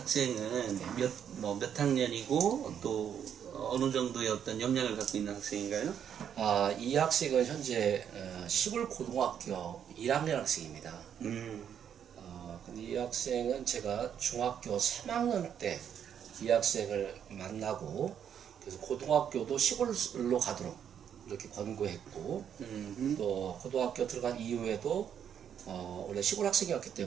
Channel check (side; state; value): left; quieter; 8.7 dB